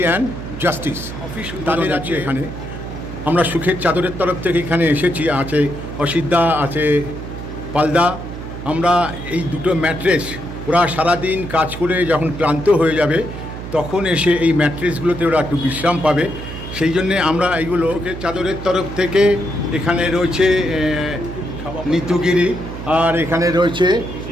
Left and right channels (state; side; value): noise; right; hum, 9 dB below the sound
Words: and justice office তাদের আছে এখানে। আমরা সুখের চাদরের তরফ থেকে এখানে এসেছি, আছে অসিদ্ধা, আছে পালদা। আমরা এই দুটো ম্যাট্রেস, ওরা সারাদিন কাজ করে যখন ক্লান্ত হয়ে যাবে তখন এসে এই ম্যাট্রেসগুলোতে ওরা একটু বিশ্রাম পাবে, সেই জন্যে আমরা এইগুলো সুখের চাদরের তরফ থেকে। এখানে রয়েছে নিতুগিরি, আর এখানে রয়েছে